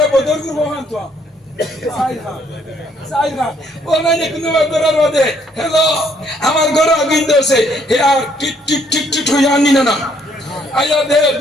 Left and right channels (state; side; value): normal; both; correlation 0.67